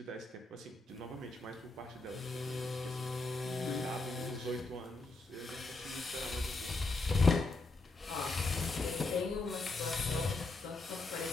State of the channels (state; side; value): quieter; right; 3.3 dB